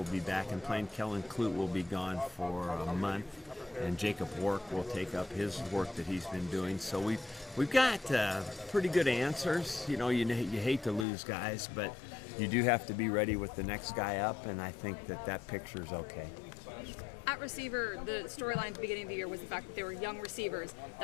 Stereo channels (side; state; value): right; drops out; at 11.1 s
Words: be back and playing. Kellen Clute will be gone for a month, and Jacob Work will take up his work that he's been doing. So we've got pretty good answers. You hate to lose guys, but you do have to be ready with the next guy up, and I think that picture's okay. At receiver, the storyline at the beginning of the year was the fact that there were young receivers